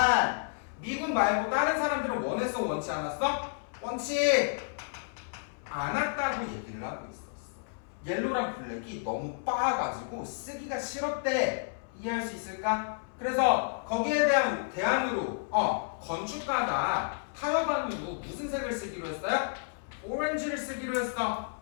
미군 말고 다른 사람들은 원했어 원치 않았어? 원치 않았다고 얘기를 하고 있었어. 옐로랑 블랙이 너무 빻아가지고 쓰기가 싫었대. 이해할 수 있을까? 그래서 거기에 대한 대안으로 건축가가 타협안으로 무슨 색을 쓰기로 했어요? 오렌지를 쓰기로 했어.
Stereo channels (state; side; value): silent; right; 57 dB below the other